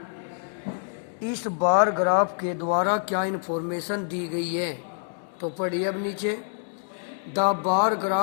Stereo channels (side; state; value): right; silent; digital silence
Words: इस बार ग्राफ के द्वारा क्या इन्फॉर्मेशन दी गई है। तो पढ़िए अब नीचे, the bar